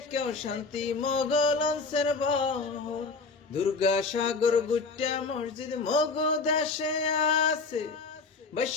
শান্তি মগলন্সের বহর। দুর্গা সাগর গুট্টা মসজিদ মগ দেশে আছে,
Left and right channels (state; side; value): quieter; right; 4.2 dB